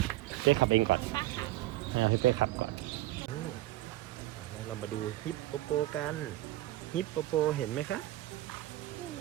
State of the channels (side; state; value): left; quieter; 16.2 dB